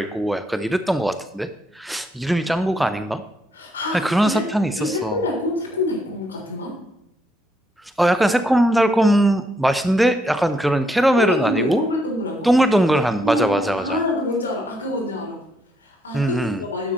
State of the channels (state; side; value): normal; both; correlation 0.76